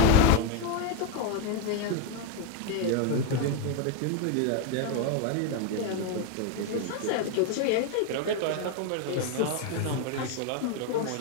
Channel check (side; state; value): both; different; correlation 0.01